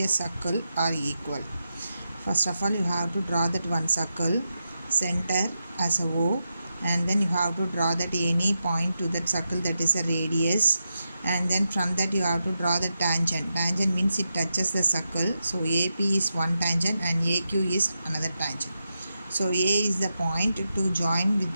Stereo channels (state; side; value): inverted; both; correlation -0.87